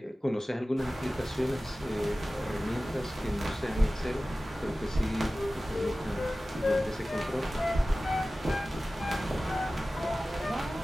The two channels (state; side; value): normal; both; correlation 0.96